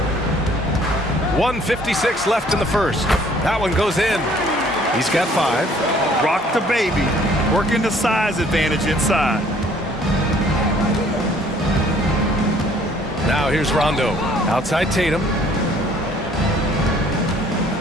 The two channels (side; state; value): both; normal; correlation 0.58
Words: 1:56 left in the first. That one goes in. He's got 5. Rock the baby, working the size advantage inside. Now here's Rondo. Outside Tatum.